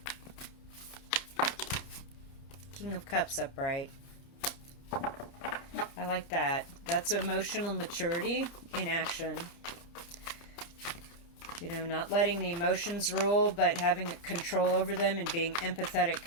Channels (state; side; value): late; right; 30 ms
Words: King of Cups upright. I like that. That's emotional maturity in action. You know, not letting the emotions rule, but having control over them and being